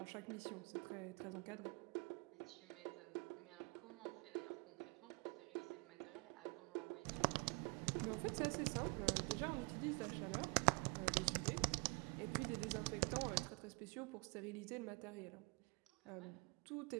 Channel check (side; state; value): left; quieter; 31.7 dB